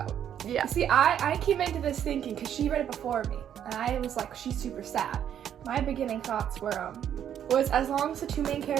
Yeah. See, I came into this thinking, because she read it before me, and I was like, she's super sad. My beginning thoughts were, was as long as the two main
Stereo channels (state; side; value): quieter; left; 9.6 dB